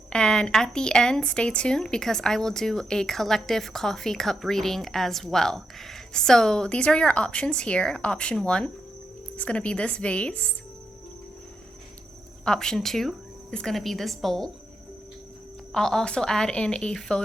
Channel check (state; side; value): normal; both; correlation 0.83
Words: And at the end, stay tuned because I will do a collective coffee cup reading as well. So these are your options here. Option 1 is going to be this vase. Option 2 is going to be this bowl. I'll also add in a